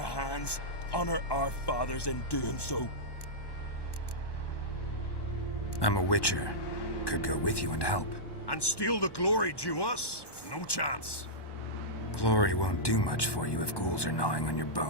Honor our fathers in doing so. I'm a witcher. Could go with you and help. And steal the glory due us? No chance. Glory won't do much for you if ghouls are gnawing on your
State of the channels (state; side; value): late; right; 1.1 ms